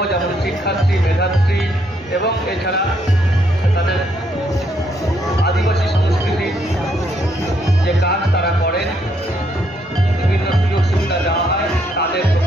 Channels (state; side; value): normal; both; correlation 0.72